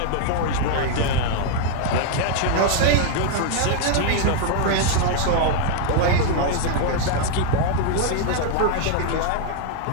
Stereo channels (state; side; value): different; both; correlation 0.00